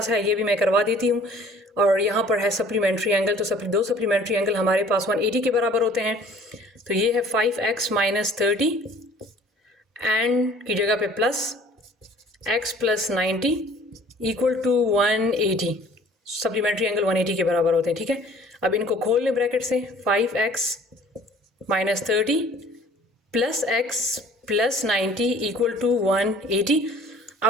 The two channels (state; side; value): normal; both; correlation 0.52